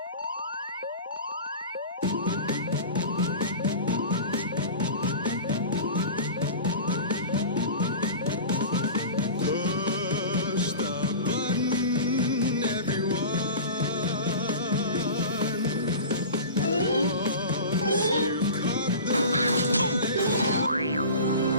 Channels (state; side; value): inverted; both; correlation -0.35